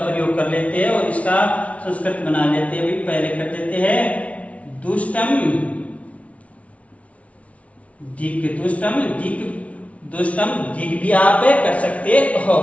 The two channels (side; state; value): right; late; 0.065 ms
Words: कर लेते हैं और इसका संस्कृत बना लेते हैं। भाई पहले कर देते हैं दुष्टम दिक, दुष्टम दिक, दुष्टम दिक भी आप कर सकते हो।